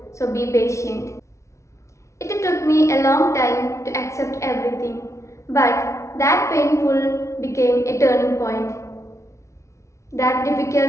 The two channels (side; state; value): right; late; 0.14 ms